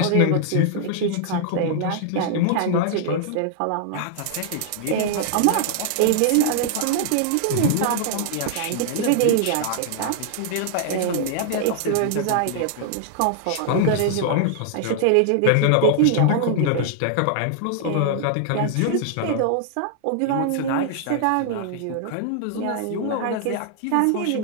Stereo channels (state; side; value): different; both; correlation -0.01